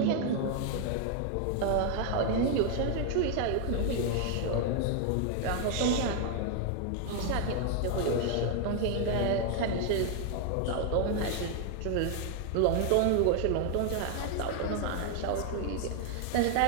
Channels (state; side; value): different; both; correlation 0.00